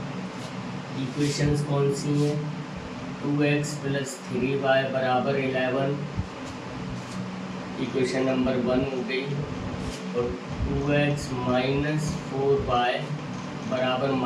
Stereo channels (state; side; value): identical; both; correlation 1.00